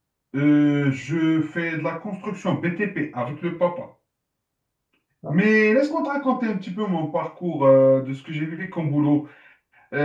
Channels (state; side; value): identical; both; correlation 1.00